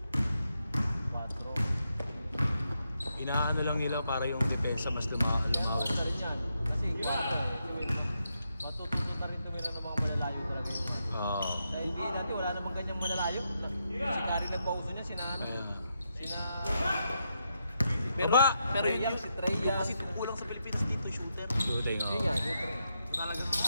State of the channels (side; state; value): both; inverted; correlation -0.82